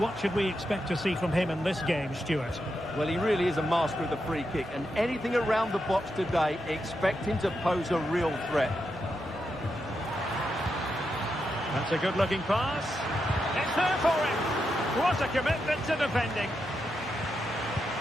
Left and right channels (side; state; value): both; normal; correlation 0.85